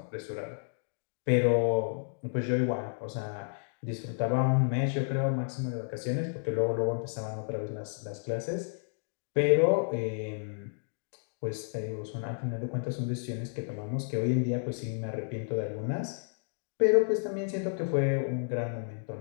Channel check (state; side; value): silent; right; digital silence